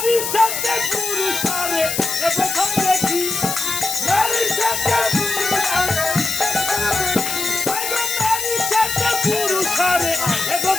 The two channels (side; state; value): left; noise; hiss, 3 dB below the sound